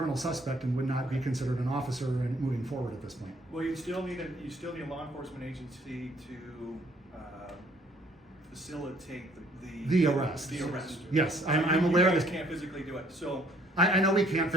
suspect and would not be considered an officer and moving forward at this point. well, you still need a law enforcement agency to facilitate The arrest. The arrest. Yes, I'm aware of You this. guys can't physically do it, so. I know we can't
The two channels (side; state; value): both; normal; correlation 0.62